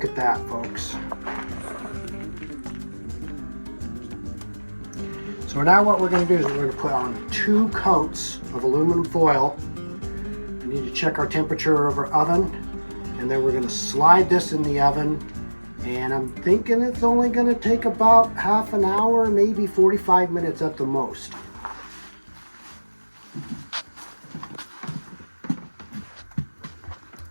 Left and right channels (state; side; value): inverted; both; correlation -1.00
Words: at that, folks. So now what we're going to do is we're going to put on 2 coats of aluminum foil. We need to check our temperature of our oven. And then we're going to slide this in the oven, and I'm thinking it's only going to take about half an hour, maybe 45 minutes at the most.